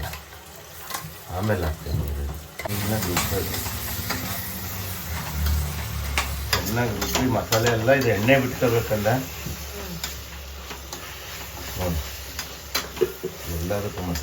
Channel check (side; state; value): both; identical; correlation 1.00